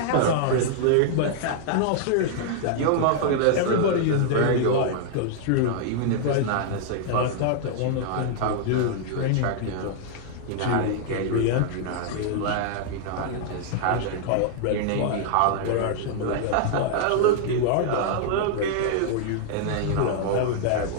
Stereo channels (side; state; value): both; different; correlation -0.01